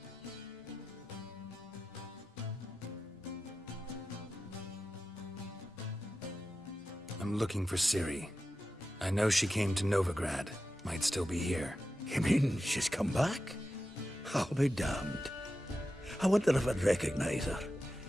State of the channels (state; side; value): normal; both; correlation 0.92